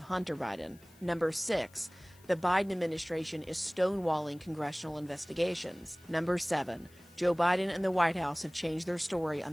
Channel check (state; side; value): noise; left; hiss, 27 dB below the sound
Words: Hunter Biden. Number 6, the Biden administration is stonewalling congressional investigations. Number 7, Joe Biden and the White House have changed their story on